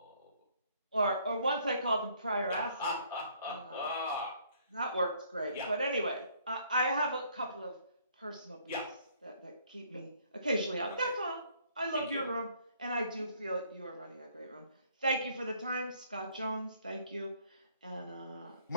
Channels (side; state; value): both; inverted; correlation -0.63